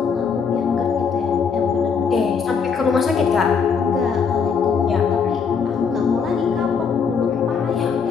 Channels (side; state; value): right; quieter; 6.1 dB